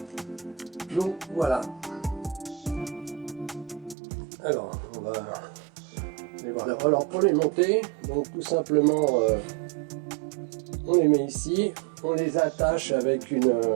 Donc voilà. Alors, on va les voir. Alors pour les monter, donc tout simplement, on les met ici, on les attache avec une...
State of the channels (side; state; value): left; drops out; at 4.0 s